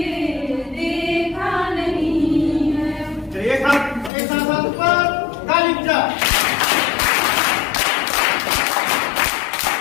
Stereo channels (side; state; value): right; drops out; at 4.1 s